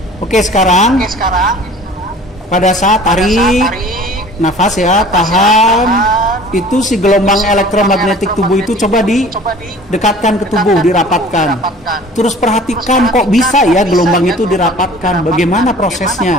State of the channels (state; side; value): normal; both; correlation 0.46